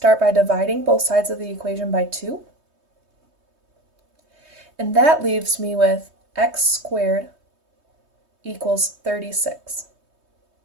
by dividing both sides of the equation by 2. And that leaves me with x squared equals 36.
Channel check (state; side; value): late; left; 3.2 ms